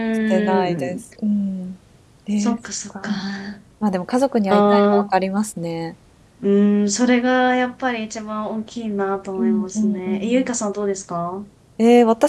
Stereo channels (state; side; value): identical; both; correlation 1.00